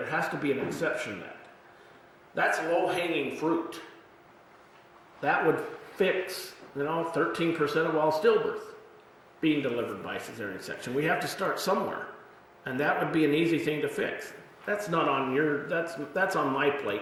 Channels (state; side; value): identical; both; correlation 1.00